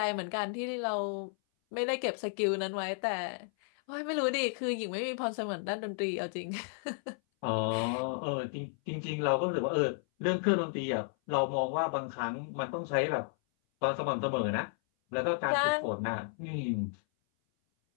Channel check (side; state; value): right; silent; 56 dB below the other